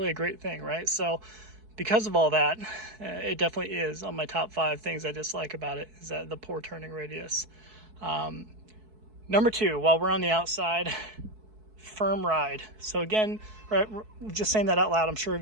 a great thing, right? So because of all that, it definitely is on my top 5 things I dislike about it, is that the poor turning radius. Number 2, while we're on the outside, firm ride. So again, right, just saying that out loud, I'm sure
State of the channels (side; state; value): left; late; 4.6 ms